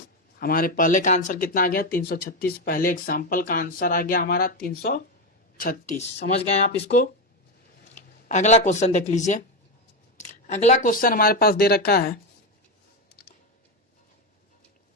हमारे पहले का आंसर कितना आ गया, 336। पहले एग्जाम्पल का आंसर आ गया हमारा 336। समझ गए आप इसको। अगला क्वेश्चन देख लीजिए। अगला क्वेश्चन हमारे पास दे रखा है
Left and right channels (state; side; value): normal; both; correlation 0.12